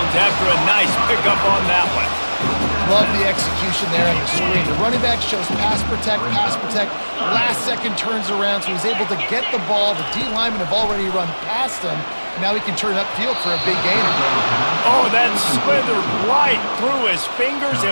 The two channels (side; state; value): both; inverted; correlation -1.00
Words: after a nice pickup on that one. Love the execution there on the screen. The running back shows pass protect. Last second turns around, so he's able to get the ball. The D linemen have already run past him. Now he can turn upfield for a big gain. Oh, that slithered right through his fingers